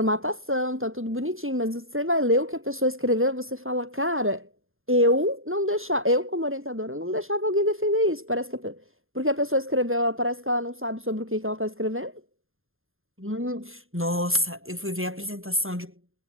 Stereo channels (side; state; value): left; late; 0.60 ms